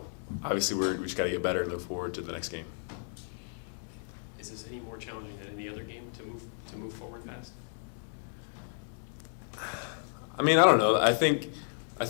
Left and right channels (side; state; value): right; silent; digital silence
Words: obviously we just got to get better and look forward to the next game. Is this any more challenging than any other game to move forward fast? I don't know. I think